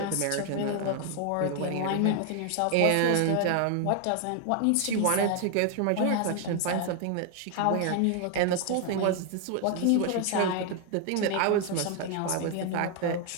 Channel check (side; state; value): both; different; correlation 0.01